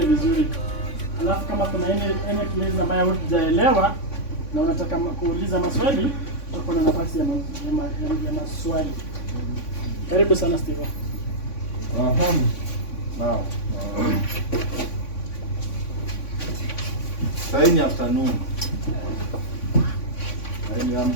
vizuri. Alafu kama kuna any place ambayo hujaelewa na unataka kuuliza maswali, uko na nafasi ya maswali. Karibu sana Steve. Now. Saini afternoon.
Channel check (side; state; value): right; late; 3.5 ms